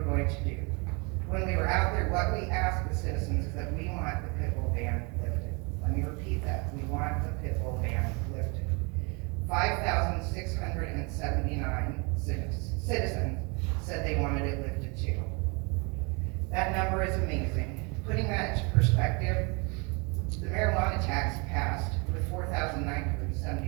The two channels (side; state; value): left; quieter; 31.0 dB